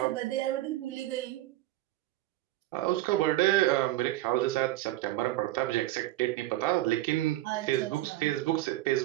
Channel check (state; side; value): quieter; left; 16.4 dB